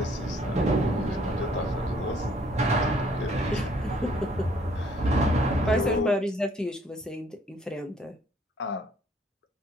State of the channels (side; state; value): both; normal; correlation 0.62